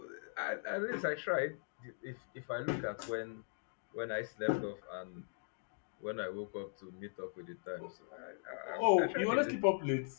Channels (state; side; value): silent; right; digital silence